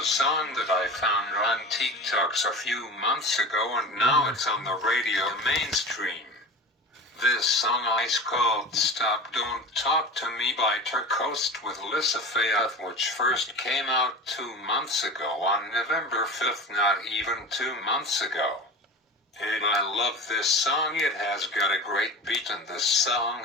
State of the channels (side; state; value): both; normal; correlation 0.32